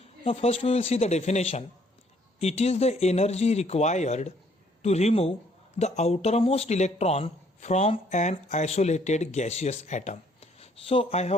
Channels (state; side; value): normal; both; correlation 0.64